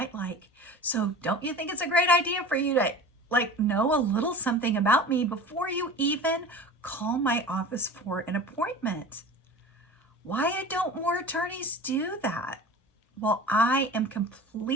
like. So don't you think it's a great idea for you to know a little something about me before you even call my office for an appointment? Why don't more attorneys do that? Well, I am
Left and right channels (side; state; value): both; normal; correlation 0.37